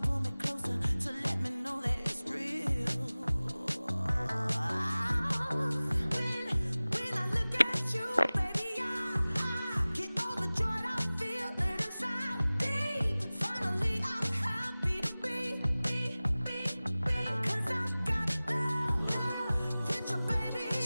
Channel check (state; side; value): inverted; both; correlation -0.98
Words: me closer to let me know that it's real. When I look at you, baby, I get overjoyed. I feel it inside deep. Finally, I'm happy to be. 'Cause I got love with your baby. I